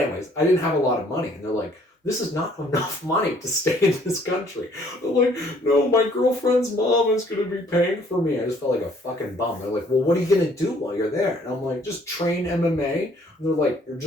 anyways, I didn't have a lot of money. And they're like, this is not enough money to stay in this country. I'm like, no, my girlfriend's mom is going to be paying for me. I just felt like a fucking bum. They're like, well, what are you going to do while you're there? And I'm like, just train MMA. And they're like, you're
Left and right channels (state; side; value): normal; both; correlation 0.61